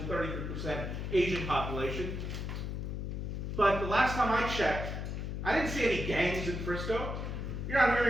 33% Asian population. But the last time I checked, I didn't see any gangs in Frisco. You're not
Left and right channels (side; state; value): left; noise; hum, 4 dB below the sound